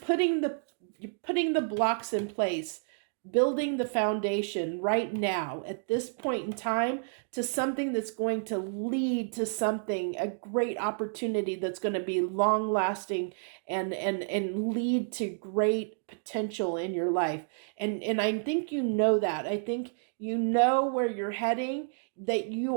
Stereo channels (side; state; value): left; silent; digital silence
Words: the blocks in place, building the foundation right now at this point in time to something that's going to lead to something, a great opportunity that's going to be long lasting and lead to great potential in your life. And I think you know that. I think you know where you're heading, that